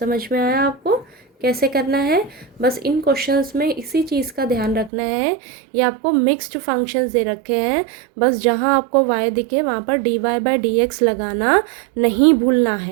में आया आपको कैसे करना है, बस इन क्वेश्चंस में इसी चीज़ का ध्यान रखना है। ये आपको मिक्स्ड फंक्शंस दे रखे हैं, बस जहाँ आपको y दिखे वहाँ पर dy/dx लगाना नहीं भूलना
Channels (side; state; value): left; drops out; at 4.9 s